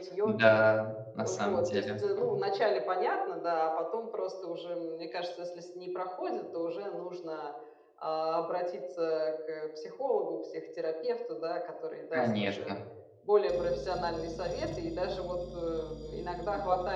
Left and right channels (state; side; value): identical; both; correlation 1.00